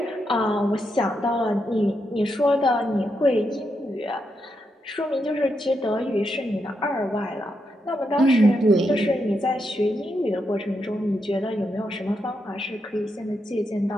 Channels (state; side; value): normal; both; correlation 0.83